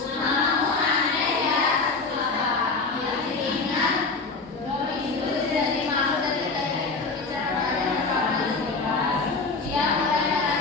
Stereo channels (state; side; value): quieter; right; 4.0 dB